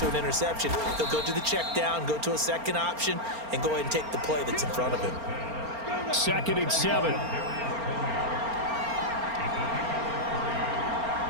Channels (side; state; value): left; late; 4.3 ms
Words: an interception. He'll go to the check down, go to a second option, and go ahead and take the play that's in front of him. 2nd and 7.